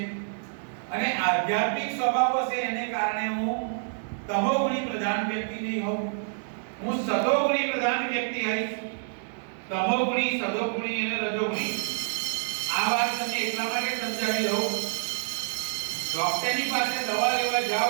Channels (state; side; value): silent; left; digital silence